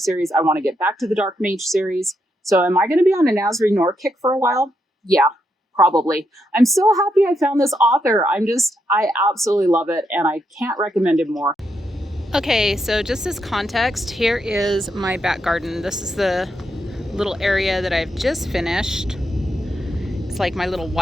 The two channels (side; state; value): both; normal; correlation 0.81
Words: I want to get back to the Dark Mage series. So am I going to be on a Nazri Noor kick for a while? Yeah. Probably. I'm so happy I found this author. I absolutely love it, and I can't recommend him more. Okay, so just as context, here is my back garden. This is the little area that I've just finished. It's like my little